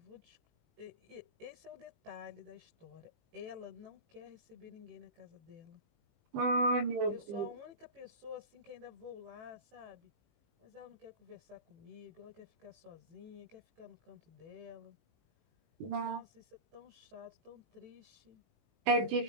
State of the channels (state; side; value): late; left; 18 ms